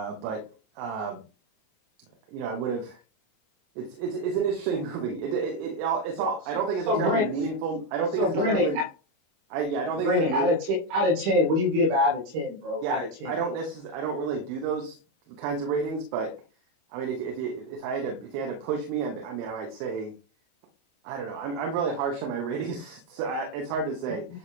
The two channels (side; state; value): left; late; 25 ms